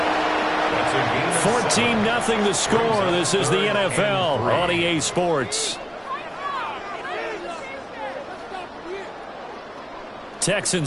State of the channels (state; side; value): identical; both; correlation 1.00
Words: 3. 14-0 the score. This is the NFL on EA Sports.